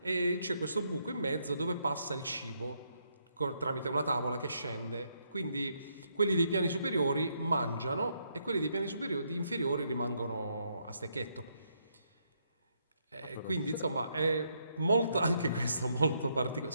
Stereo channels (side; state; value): both; inverted; correlation -0.75